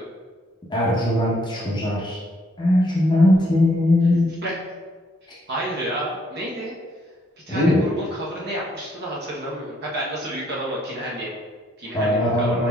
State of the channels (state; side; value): normal; both; correlation 0.70